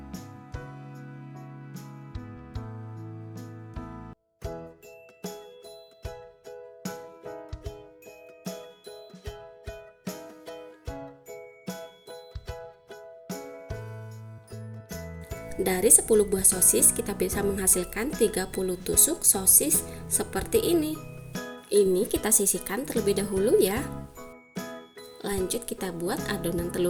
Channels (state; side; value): identical; both; correlation 1.00